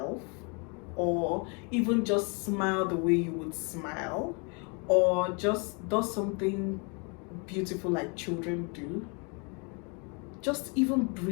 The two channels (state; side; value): quieter; right; 34.4 dB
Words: or even just smile the way you would smile, or just does something beautiful like children do. Just even